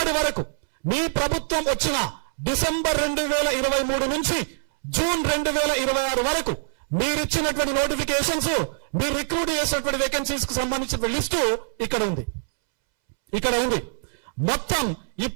వరకు మీ ప్రభుత్వం వచ్చిన డిసెంబర్ 2023 నుంచి జూన్ 2026 వరకు మీరు ఇచ్చినటువంటి నోటిఫికేషన్స్, మీరు రిక్రూట్ చేసినటువంటి వేకెన్సీస్ కు సంబంధించిన లిస్టు ఇక్కడ ఉంది. మొత్తం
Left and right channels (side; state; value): left; silent; 62 dB below the other